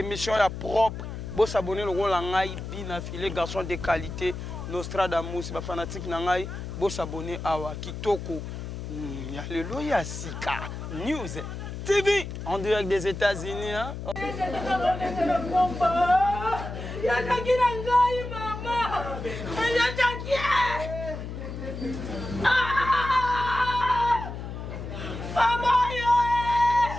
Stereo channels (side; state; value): left; noise; hum, 8 dB below the sound